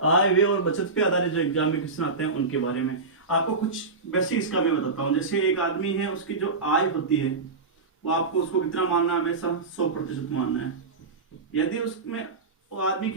आय व्यय और बचत पे आधारित जो एग्जाम में क्वेश्चन आते हैं उनके बारे में। आपको कुछ बेसिक इसका मैं बताता हूँ। जैसे एक आदमी है, उसकी जो आय होती है वो आपको उसको कितना मानना है? हमेशा 100% मानना है। यदि उसमें वो आदमी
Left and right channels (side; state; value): left; quieter; 4.0 dB